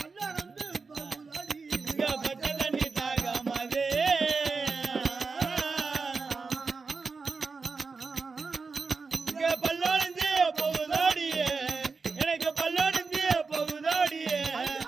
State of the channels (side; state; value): left; quieter; 4.5 dB